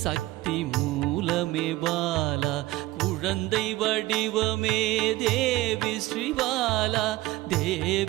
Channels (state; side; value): quieter; left; 17.9 dB